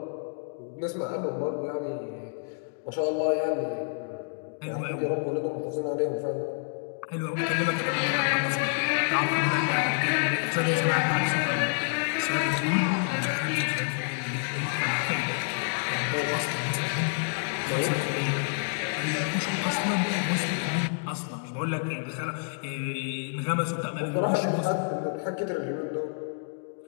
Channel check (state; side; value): silent; right; digital silence